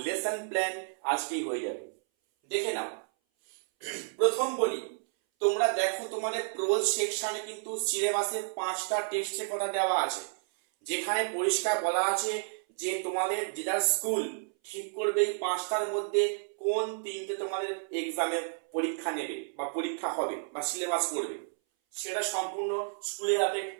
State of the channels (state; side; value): silent; left; 57 dB below the other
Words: লেসন প্ল্যান আজকেই হয়ে যাবে। দেখে নাও, প্রথম বলি, তোমরা দেখো তোমাদের প্রোজ সেকশনে কিন্তু সিলেবাসে 5টা টেক্সটের কথা দেওয়া আছে, যেখানে পরিষ্কার বলা আছে যে তোমাদের যেটা স্কুল ঠিক করবে এই 5টার মধ্যে কোন 3টে তোমাদের এক্সামে পরীক্ষা নেবে বা পরীক্ষা হবে বা সিলেবাস করবে, সেটা সম্পূর্ণ স্কুলের হাতে